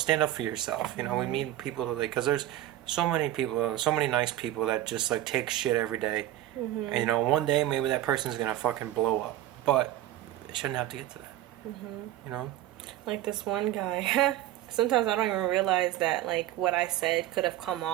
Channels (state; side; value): quieter; left; 13.8 dB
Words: up for yourself. You know, we need people to, like, because there's so many people, so many nice people that just like take shit every day. And you know, one day maybe that person's gonna fucking blow up, but it shouldn't have to get to that. You know, like this one guy. Sometimes I don't even realize that like what I said could have come